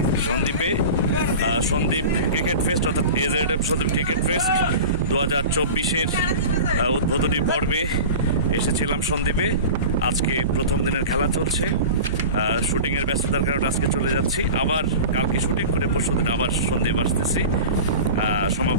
সন্দ্বীপে। সন্দ্বীপ ক্রিকেট ফেস্ট অর্থাৎ এজেডএফ সন্দ্বীপ ক্রিকেট ফেস্ট 2024-এর উদ্বোধনী পর্বে এসেছিলাম সন্দ্বীপে। আজকে প্রথম দিনের খেলা চলছে। শুটিংয়ের ব্যস্ততার কারণে আজকে চলে যাচ্ছি, আবার কালকে শুটিং করে পরশুদিন আবার সন্দ্বীপ আসতেছি।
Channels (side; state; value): both; inverted; correlation -0.33